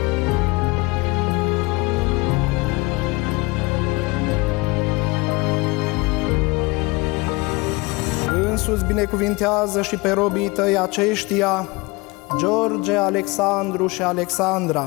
Însuți binecuvintează și pe robii tăi aceștia, George, Alexandru și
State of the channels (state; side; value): quieter; right; 24.7 dB